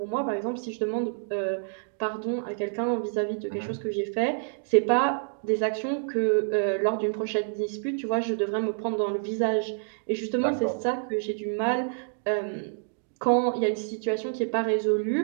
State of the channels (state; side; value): silent; left; digital silence